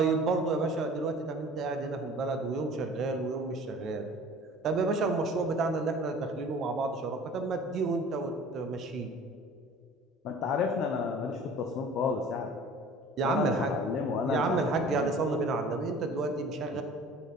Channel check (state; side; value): normal; both; correlation 0.46